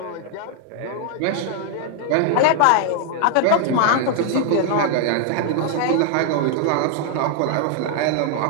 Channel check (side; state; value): both; different; correlation 0.00